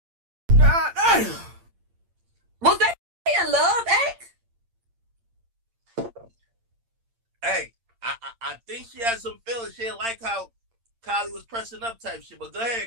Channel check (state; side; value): late; left; 8.8 ms